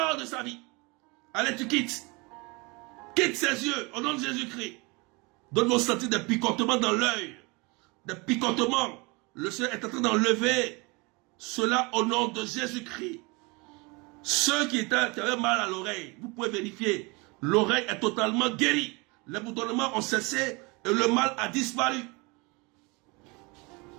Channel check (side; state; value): left; quieter; 27.4 dB